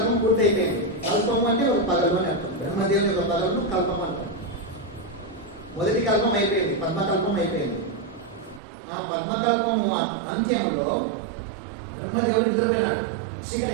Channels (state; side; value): drops out; left; at 8.6 s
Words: పూర్తి అయిపోయింది. కల్పం అంటే ఒక పగలు అని అర్థం. బ్రహ్మదేవుని యొక్క పగలను కల్పం అంటాం. మొదటి కల్పం అయిపోయింది, పద్మకల్పం అయిపోయింది. ఆ పద్మకల్పము అంత్యములో బ్రహ్మదేవుడు నిద్రపోయినాడు. చీకటి